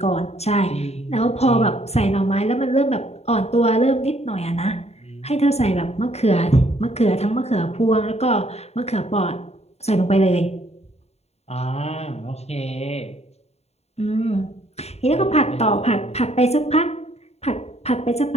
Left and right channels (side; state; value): right; late; 0.31 ms